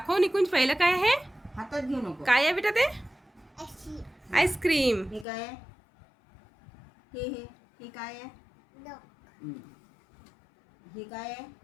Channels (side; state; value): right; drops out; at 5.2 s